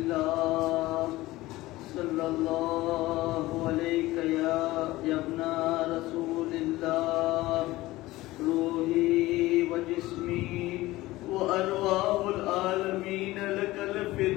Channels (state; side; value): quieter; right; 18.3 dB